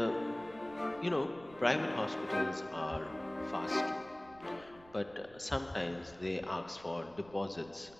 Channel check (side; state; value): right; noise; rumble, 23 dB below the sound